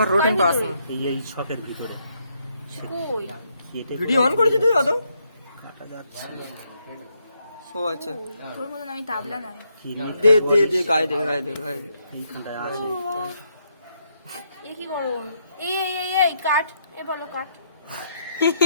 রোটিন পাসিং এই শপের ভিতরে কই? কেটে ভিডিও অন করেছিস তুই অত কাটা যাচ্ছে। ও আচ্ছা তোর মতন আমি তাবলা নাই। কি নিয়ে দে দে দে গায়ে দে গায়ে দে গায়ে দে এইখানটায় আছে। এ কি গরম? এই এই এই এই কাট, এ বলো কাট।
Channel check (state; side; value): inverted; both; correlation -0.76